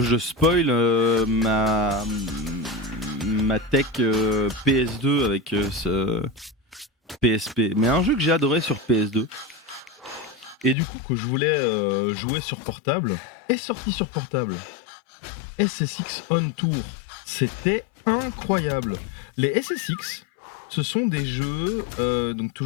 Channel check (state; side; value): drops out; right; at 10.8 s